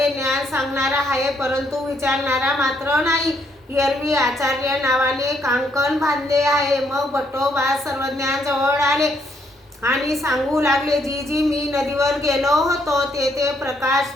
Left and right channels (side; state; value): both; normal; correlation 0.72